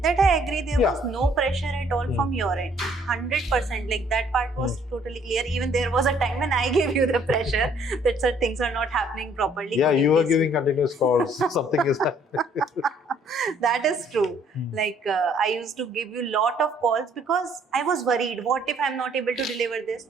That I agree, there was no pressure at all from your end. 100%, like that part was totally clear. Even there was a time when I gave you the pressure that sir, things are not happening properly. Yeah, you were giving continuous calls. Something is happening. That is true. Like I used to give you lot of calls because I was worried. What if I'm not able to deliver this?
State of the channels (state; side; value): normal; both; correlation 0.62